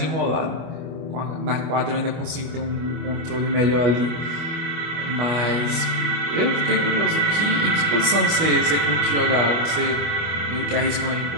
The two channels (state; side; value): late; left; 25 ms